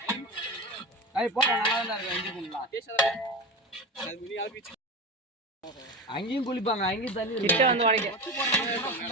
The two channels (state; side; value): normal; both; correlation 0.24